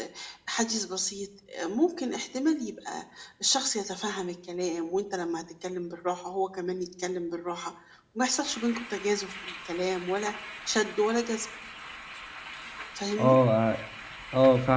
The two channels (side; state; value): both; identical; correlation 1.00